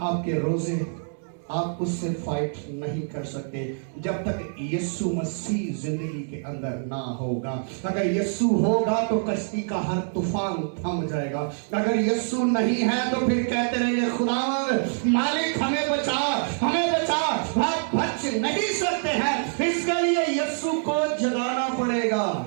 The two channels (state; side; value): silent; left; 61 dB below the other